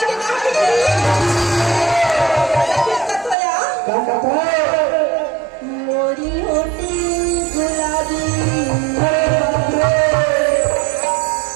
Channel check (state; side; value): drops out; left; at 3.4 s